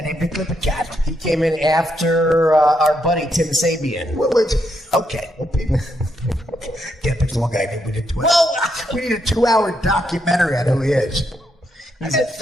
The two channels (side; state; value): both; normal; correlation 0.79